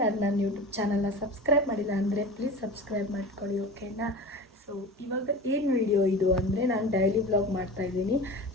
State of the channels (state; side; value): normal; both; correlation 0.33